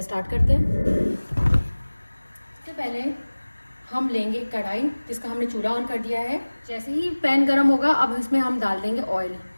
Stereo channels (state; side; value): inverted; both; correlation -1.00